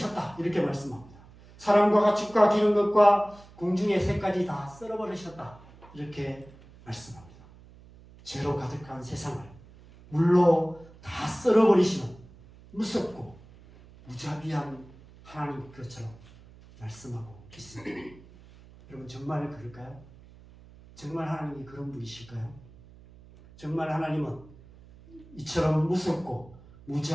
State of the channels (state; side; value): noise; right; hum, 22 dB below the sound